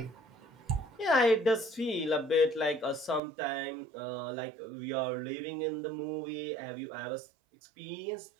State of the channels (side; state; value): left; drops out; at 3.2 s